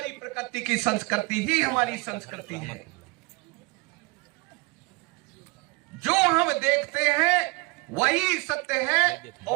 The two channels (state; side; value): quieter; left; 25.3 dB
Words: प्रकृति की संस्कृति ही हमारी संस्कृति है। जो हम देखते हैं वही सत्य है